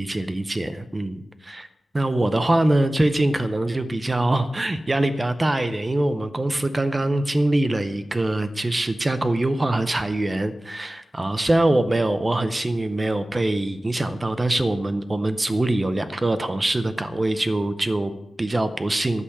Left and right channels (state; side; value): normal; both; correlation 0.97